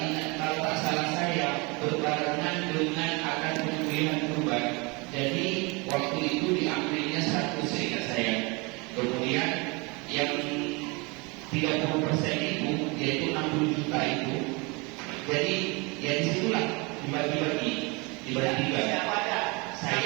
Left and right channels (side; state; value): left; quieter; 28.0 dB